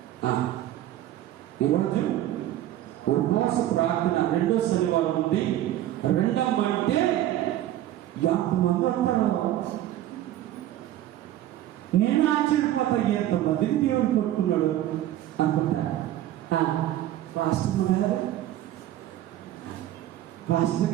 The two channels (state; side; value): quieter; left; 13.3 dB